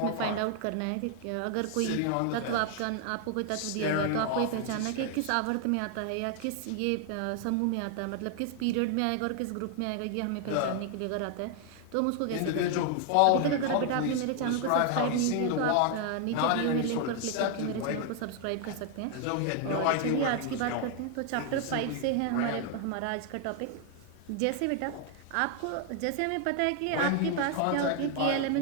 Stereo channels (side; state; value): both; different; correlation 0.00